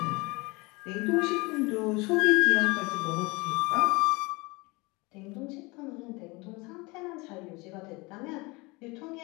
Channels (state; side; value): quieter; right; 25.1 dB